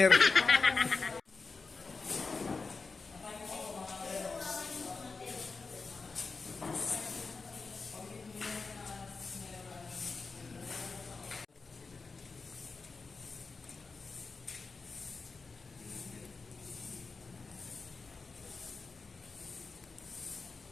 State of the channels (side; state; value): right; quieter; 4.3 dB